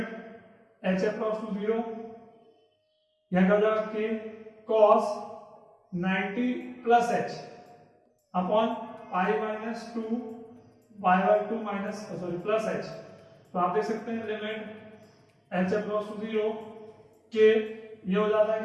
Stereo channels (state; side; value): identical; both; correlation 1.00